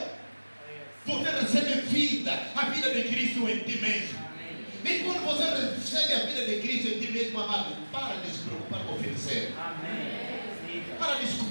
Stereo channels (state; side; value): inverted; both; correlation -1.00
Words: você recebe vida, a vida de Cristo em ti mesmo. E quando você recebe a vida de Cristo em ti mesmo, amado, para de se preocupar com o oferecer. Para de